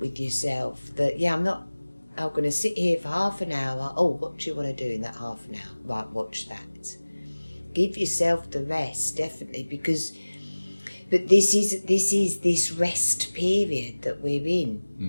yourself that, I'm going to sit here for half an hour. Oh, what do you want to do in that half an hour? Right, watch that. Give yourself the rest, definitely, but this is this rest period that we're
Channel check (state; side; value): inverted; both; correlation -1.00